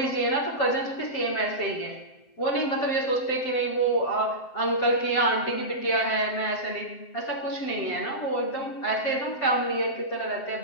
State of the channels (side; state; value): right; late; 7.6 ms